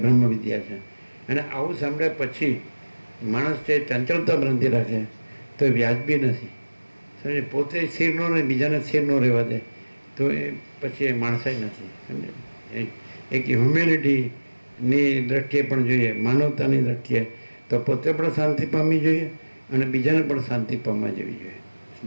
વિદ્યા છે. અને આવું સાંભળ્યા પછી માણસ છે ચંચળતા ભ્રાંતિ રાખે તો એ વ્યાજબી નથી. સમજે? પોતે સ્થિર ન રહે, બીજાને સ્થિર ન રહેવા દે તો એ પછી એ માણસાઈ નથી. સમજે? એક હ્યુમેનિટીની દ્રષ્ટિએ પણ જોઈએ, માનવતાની દ્રષ્ટિએ તો પોતે પણ શાંતિ પામવી જોઈએ અને બીજાને પણ શાંતિ પામવા દેવી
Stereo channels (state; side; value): inverted; both; correlation -1.00